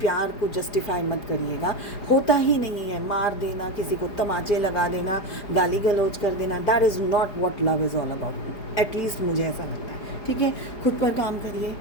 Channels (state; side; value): late; right; 4.8 ms